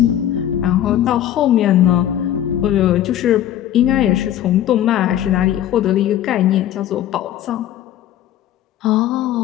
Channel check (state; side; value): quieter; right; 11.6 dB